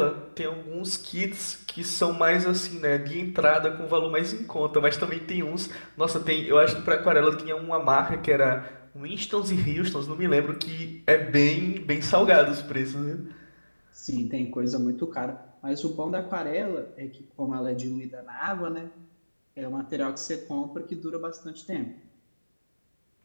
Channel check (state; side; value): inverted; both; correlation -1.00